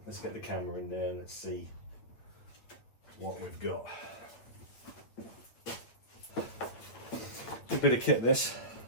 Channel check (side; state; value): right; late; 8.7 ms